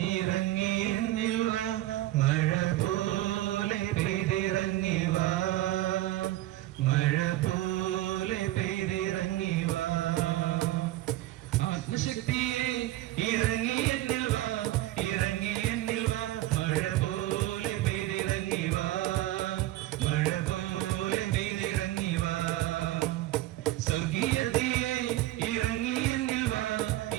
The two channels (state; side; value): quieter; left; 15.8 dB